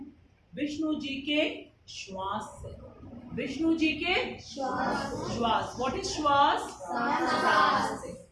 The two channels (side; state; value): both; identical; correlation 1.00